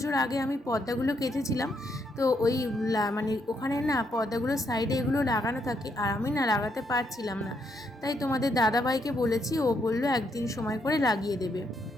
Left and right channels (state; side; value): normal; both; correlation 0.76